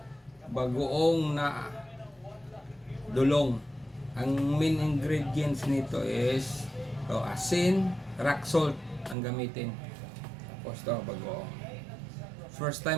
bagoong na dulong. Ang main ingredients nito is asin, rock salt ang gamitin. Tapos to, bagoong. First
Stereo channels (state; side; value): drops out; left; at 9.2 s